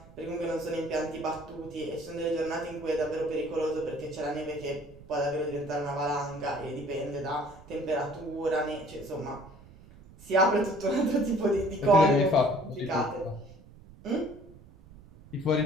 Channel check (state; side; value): noise; right; rumble, 21 dB below the sound